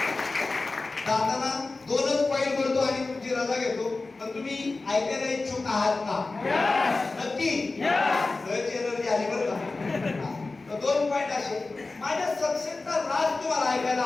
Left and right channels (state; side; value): quieter; right; 3.5 dB